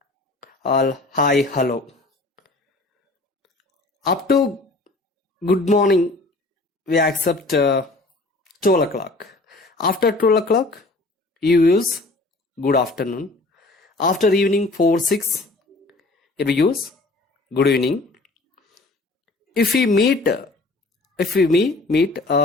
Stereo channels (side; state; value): right; quieter; 3.1 dB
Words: hi, hello. Up to good morning, we accept 12 o'clock. After 12 o'clock, you use good afternoon. After evening 4, 6, here we use good evening. If we meet